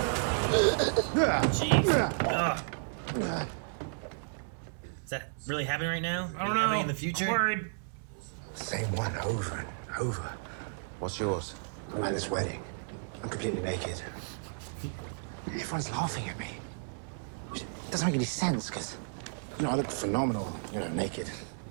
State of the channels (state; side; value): silent; left; 56 dB below the other